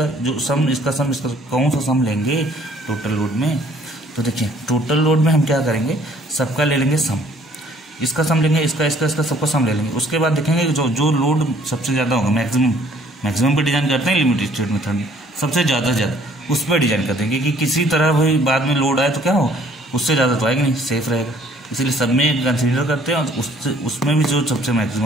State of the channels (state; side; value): normal; both; correlation 0.59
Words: जो सम, इसका सम, इसका कौन सा सम लेंगे टोटल लोड में। तो देखिए टोटल लोड में हम क्या करेंगे, सबका ले लेंगे सम, इसका सम लेंगे, इसका इसका इसका सबका सम ले लेंगे। उसके बाद देखेंगे जो लोड सबसे ज़्यादा होगा, मैक्सिमम पे डिजाइन करते हैं लिमिट स्टेट मेथड में, सबसे ज़्यादा से ज़्यादा उस पर डिजाइन करते हैं कि किसी तरह भाई बाद में लोड आए तो क्या हो, उससे ज़्यादा तो आएगा नहीं, सेफ रहेगा, इसलिए सब में कंसिडर करते हैं। और उसमें भी जो सबसे